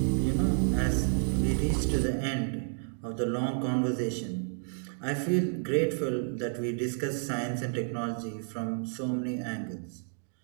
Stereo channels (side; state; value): left; silent; digital silence